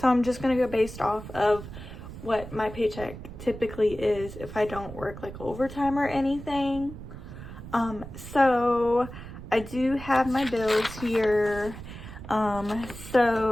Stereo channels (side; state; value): right; noise; rumble, 12 dB below the sound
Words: I'm just going to go based off of what my paycheck typically is if I don't work like overtime or anything. So I do have my bills here.